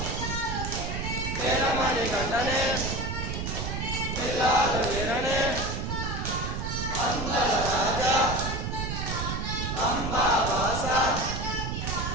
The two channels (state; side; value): noise; right; rumble, 3 dB below the sound